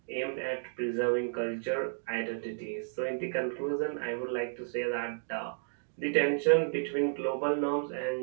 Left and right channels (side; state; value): left; silent; digital silence